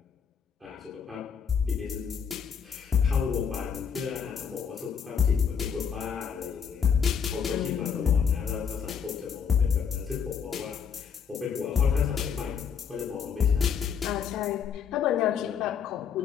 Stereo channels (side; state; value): right; quieter; 7.0 dB